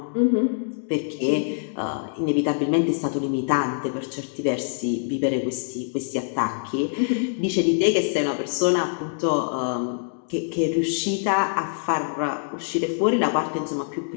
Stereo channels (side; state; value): right; silent; digital silence